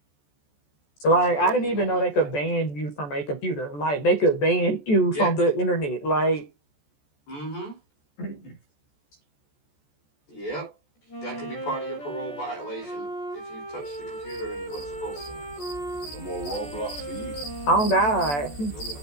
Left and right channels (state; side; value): late; right; 14 ms